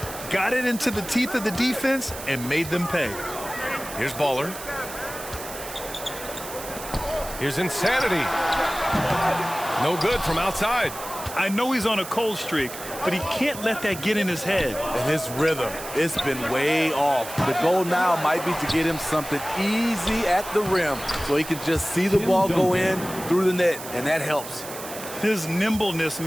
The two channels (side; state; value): right; noise; hiss, 11 dB below the sound